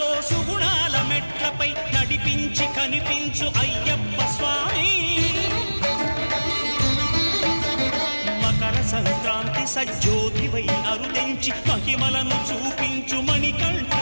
సుమలతో సుగుణాల మెట్లపై నడిపించి కనిపించు అయ్యప్ప స్వామి మకర సంక్రాంతి సజ్జోతివై అరుదించి మహిమలను చూపించు మణికంఠ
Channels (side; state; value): both; inverted; correlation -1.00